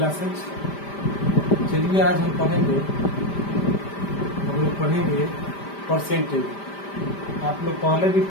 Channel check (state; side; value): late; right; 5.1 ms